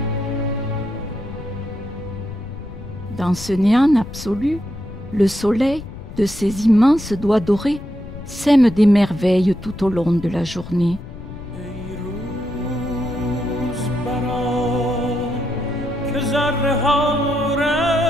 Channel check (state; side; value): noise; left; rumble, 13 dB below the sound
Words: Dans ce néant absolu, le soleil, de ses immenses doigts dorés, sème des merveilles tout au long de la journée.